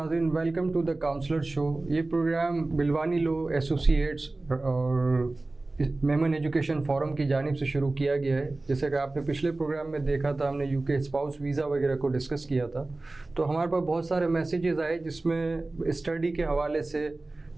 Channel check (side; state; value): left; quieter; 3.1 dB